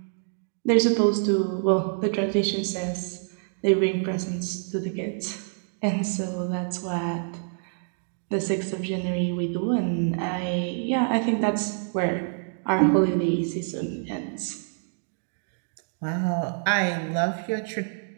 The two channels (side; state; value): left; silent; digital silence